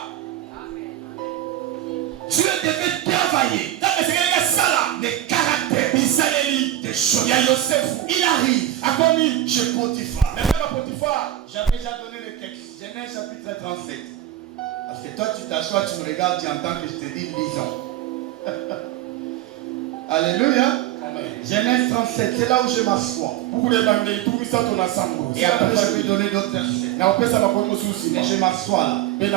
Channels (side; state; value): left; quieter; 12.9 dB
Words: Dieu devait travailler le caractère des choses. Il arrive chez Potiphar. J'avais déjà donné le texte. Genèse chapitre 37. Parce que toi tu t'assois, tu me regardes, tu entends que je te dis lisons. Alléluia. Genèse 37, c'est là où je m'assois. Et après je vais donner d'autres versets. Et je m'assois là.